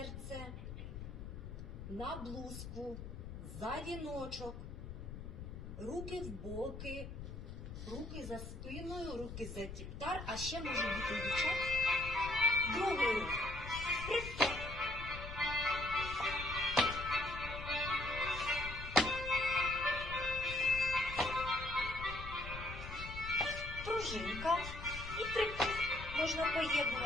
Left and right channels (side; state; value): left; noise; rumble, 9 dB below the sound